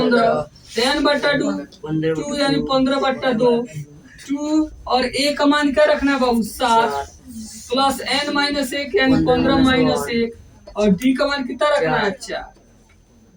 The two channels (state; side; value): identical; both; correlation 1.00